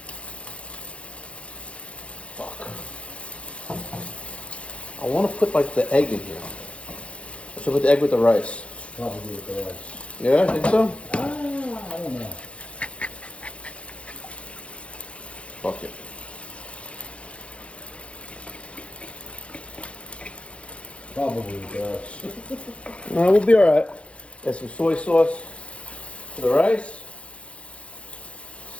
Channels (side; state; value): right; late; 0.061 ms